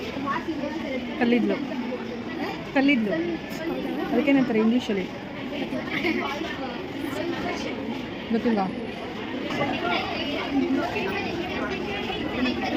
ಕಲ್ಲಿದ್ಲು ಅದಕ್ಕೇನಂತಾರೆ ಇಂಗ್ಲೀಷಲ್ಲಿ ಗೊತ್ತಿಲ್ಲ.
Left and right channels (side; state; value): both; identical; correlation 1.00